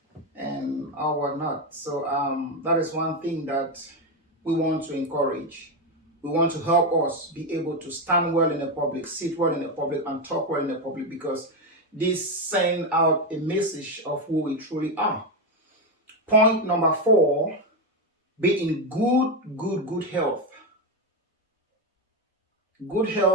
and all whatnot. So that is one thing that we want to encourage. We want to help us be able to stand well in the public, sit well in the public, and talk well in the public, because this sends out a message of who we truly are. Point number 4, be in good health. Good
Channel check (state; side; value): normal; both; correlation 0.09